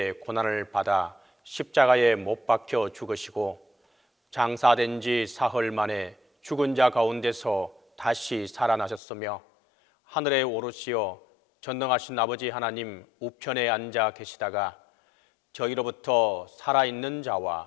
고난을 받아 십자가에 못 박혀 죽으시고 장사된 지 사흘 만에 죽은 자 가운데서 다시 살아나셨으며 하늘에 오르시어 전능하신 아버지 하나님 우편에 앉아 계시다가 저희로부터 살아있는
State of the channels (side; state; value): right; drops out; at 9.0 s